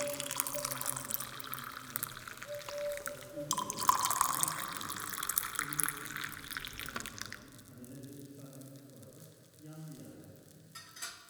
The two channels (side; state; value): both; identical; correlation 1.00